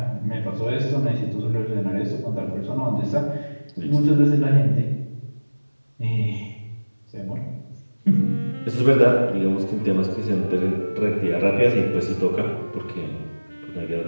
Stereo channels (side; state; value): both; inverted; correlation -1.00